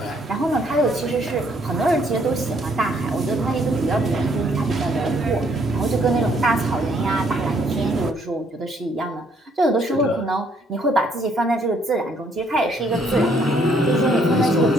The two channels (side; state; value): both; normal; correlation 0.67